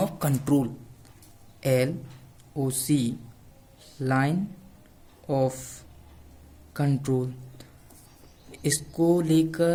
control, LOC, line of control. इसको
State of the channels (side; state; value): both; identical; correlation 1.00